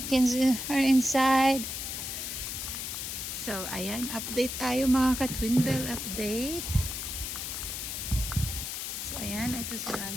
are inside. So, ayan. Update tayo mga ka-Twin Bell. Update. So, ayan. Ito si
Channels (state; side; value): noise; left; hiss, 5 dB below the sound